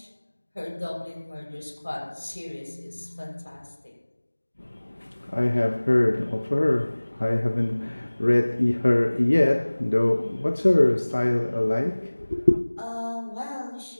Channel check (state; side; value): inverted; both; correlation -1.00